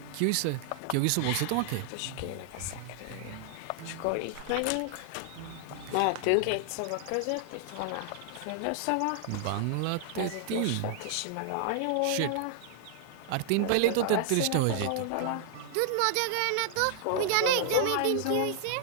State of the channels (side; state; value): both; different; correlation 0.00